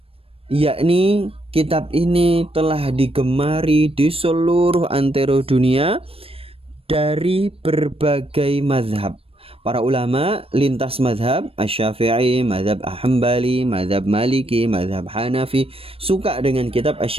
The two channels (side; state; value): left; late; 0.28 ms